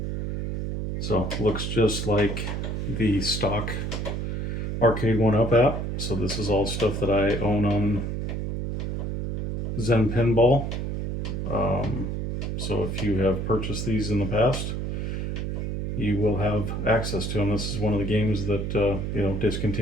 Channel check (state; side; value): noise; right; hum, 2 dB below the sound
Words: So looks just like the stock Arcade 1-Up app. So this is all stuff that I own on Zen Pinball. So if you have purchased these in the past, you will have access to them. This is one of the games that